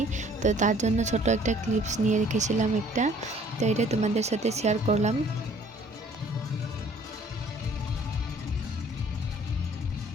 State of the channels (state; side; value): normal; both; correlation 0.56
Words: তো তার জন্য ছোট একটা ক্লিপস নিয়ে রেখেছিলাম একটা। তো এটা তোমাদের সাথে শেয়ার করলাম।